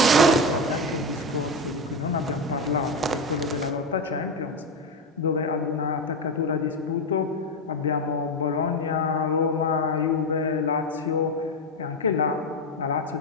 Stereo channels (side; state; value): both; normal; correlation 0.13